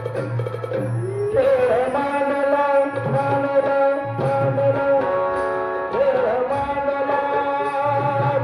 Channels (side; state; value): both; identical; correlation 1.00